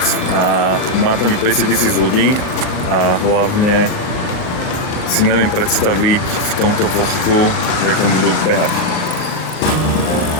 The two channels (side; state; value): right; late; 38 ms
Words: A má tam 50 000 ľudí a hlavne si neviem predstaviť v tomto vlhku, jak tam budú behať.